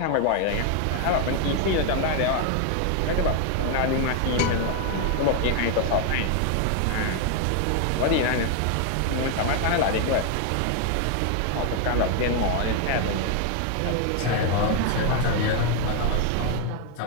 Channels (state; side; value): different; both; correlation 0.00